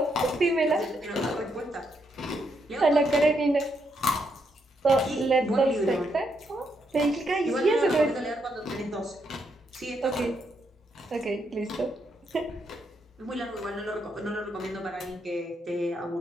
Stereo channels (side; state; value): both; normal; correlation 0.78